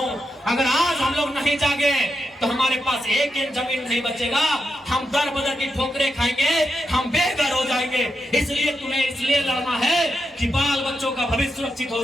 अगर आज हम लोग नहीं जागे तो हमारे पास एक जमीन नहीं बचेगा, हम दर बदर की ठोकरें खाएंगे, हम बेघर हो जाएंगे। इसलिए तुम्हें इसलिए लड़ना है कि बाल बच्चों का भविष्य सुरक्षित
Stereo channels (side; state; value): both; normal; correlation 0.86